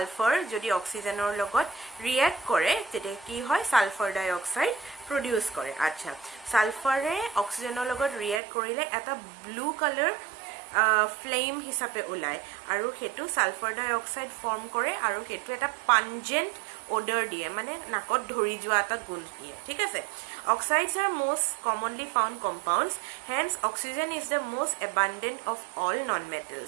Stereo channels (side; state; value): left; drops out; at 8.4 s